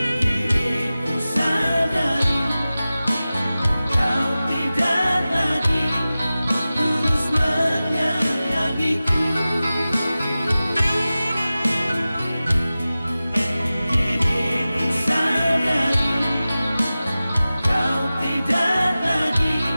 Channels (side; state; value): both; inverted; correlation -0.96